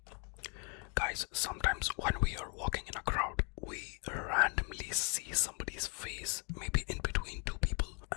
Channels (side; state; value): right; quieter; 36.1 dB